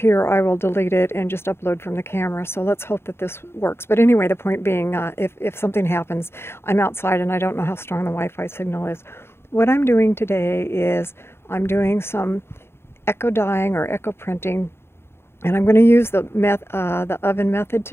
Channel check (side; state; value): right; late; 0.12 ms